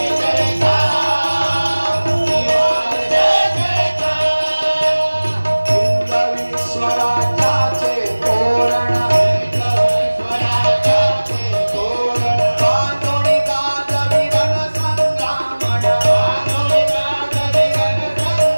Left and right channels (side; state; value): both; inverted; correlation -1.00